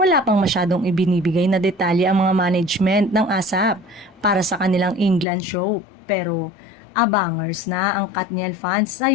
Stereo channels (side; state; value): right; drops out; at 5.2 s